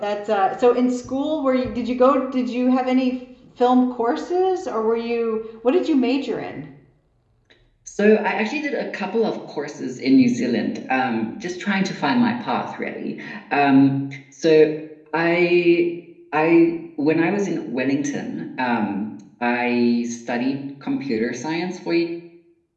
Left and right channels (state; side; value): identical; both; correlation 1.00